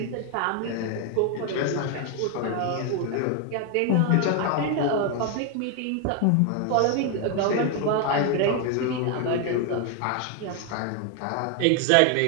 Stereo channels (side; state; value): both; different; correlation 0.01